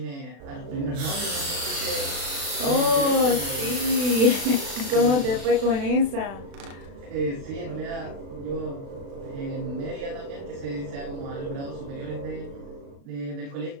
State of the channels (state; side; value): late; left; 36 ms